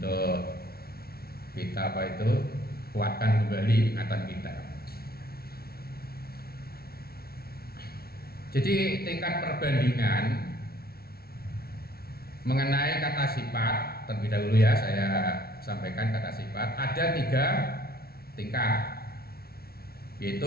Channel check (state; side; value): late; right; 0.44 ms